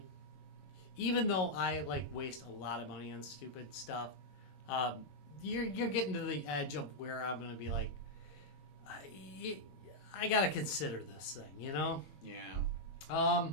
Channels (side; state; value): right; late; 22 ms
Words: even though I like waste a lot of money on stupid stuff, you're getting to the edge of where I'm gonna be like, I gotta consider this thing, you know. Yeah.